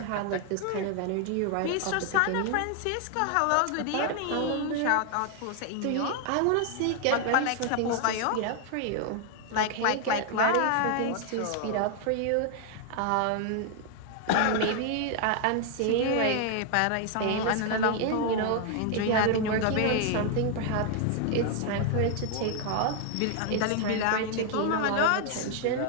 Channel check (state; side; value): different; both; correlation 0.00